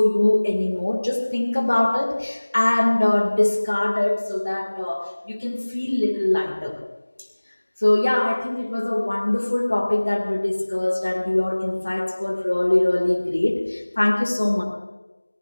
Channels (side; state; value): both; inverted; correlation -1.00